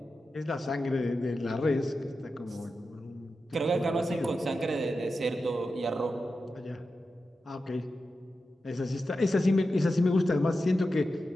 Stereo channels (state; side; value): normal; both; correlation 0.91